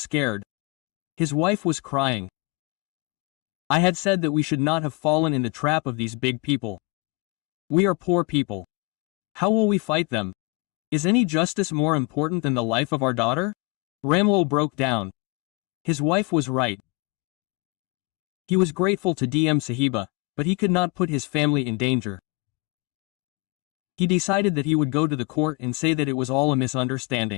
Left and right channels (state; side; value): quieter; right; 26.3 dB